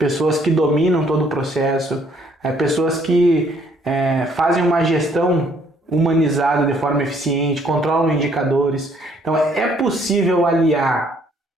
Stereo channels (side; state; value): both; normal; correlation 0.65